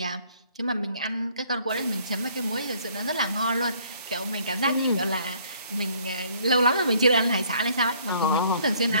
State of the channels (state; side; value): inverted; both; correlation -0.61